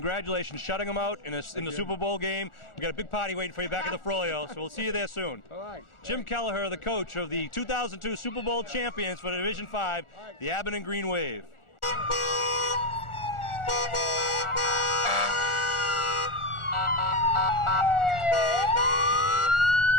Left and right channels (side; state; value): right; late; 1.4 ms